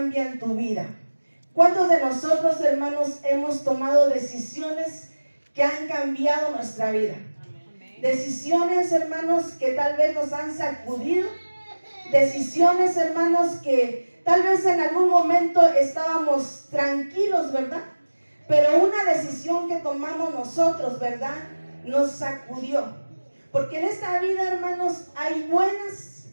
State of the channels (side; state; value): both; inverted; correlation -1.00